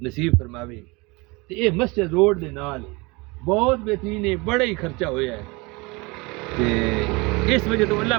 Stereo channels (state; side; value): quieter; left; 25.9 dB